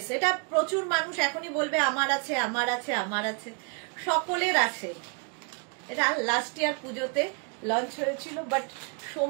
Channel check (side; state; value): left; quieter; 36.6 dB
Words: এটা প্রচুর মানুষ এখনই বলবে আমার আছে, আমার আছে, আমার আছে, সকলের আছে। এটা লাস্ট ইয়ার পুজোতে লঞ্চ হয়েছিল, বাট